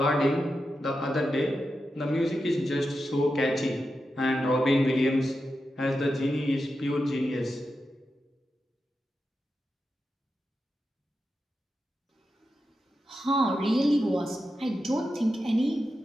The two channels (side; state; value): both; normal; correlation 0.89